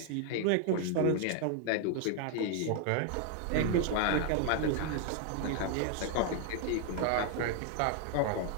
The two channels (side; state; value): both; different; correlation 0.00